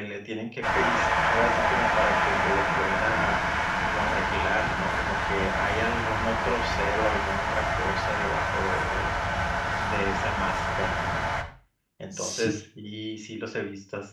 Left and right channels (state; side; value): identical; both; correlation 1.00